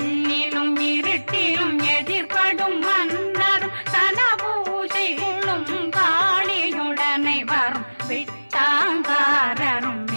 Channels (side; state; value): both; inverted; correlation -1.00